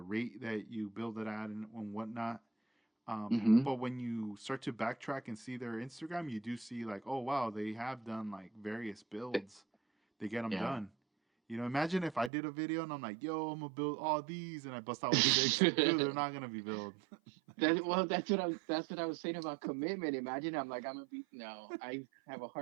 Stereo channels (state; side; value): drops out; left; at 12.3 s